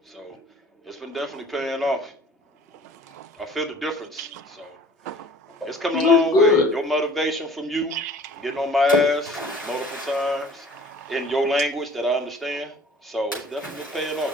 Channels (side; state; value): both; normal; correlation 0.50